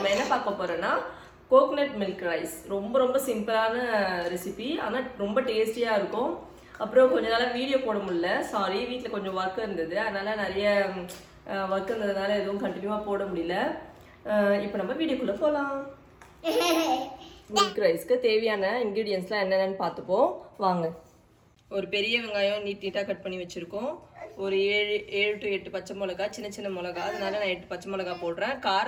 என்ன பார்க்க போறோம்னா கோகனட் மில்க் ரைஸ். ரொம்ப சிம்பிளான ரெசிபி, ஆனா ரொம்ப டேஸ்டியா இருக்கும். அப்புறம் கொஞ்ச நாளா வீடியோ போட முடியல. சாரி, வீட்ல கொஞ்சம் வர்க் இருந்தது. அதனால நிறைய வர்க் இருந்ததுனால எதுவும் கண்டினியூவா போட முடியல. இப்போ நம்ம வீடியோக்குள்ள போலாம். மில்க் ரைஸ்க்கு தேவையான இன்கிரிடியன்ஸ்லாம் என்னென்னு பார்த்துப்போம் வாங்க. ஒரு பெரிய வெங்காயம் நீட்டாக கட் பண்ணி வச்சுருக்கோம். ஒரு 7 to 8 பச்சை மிளகா, சின்ன மிளகா, அதனால நான் 8 பச்சை மிளகா போடுறேன்.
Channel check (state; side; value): identical; both; correlation 1.00